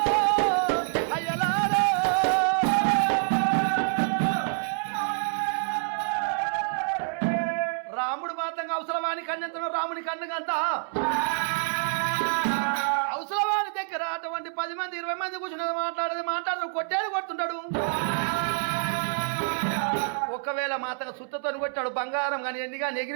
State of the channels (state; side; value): silent; left; 60 dB below the other